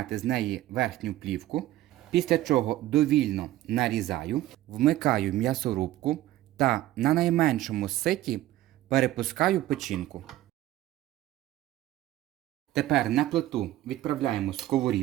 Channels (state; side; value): quieter; left; 14.8 dB